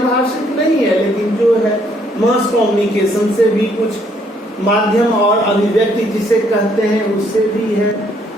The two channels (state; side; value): normal; both; correlation 0.68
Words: नहीं है, लेकिन जो है मास कम्युनिकेशन से भी कुछ माध्यम और अभिव्यक्ति जिसे कहते हैं उससे भी है।